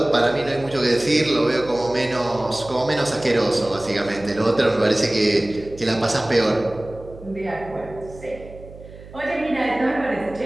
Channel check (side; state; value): right; noise; hum, 18 dB below the sound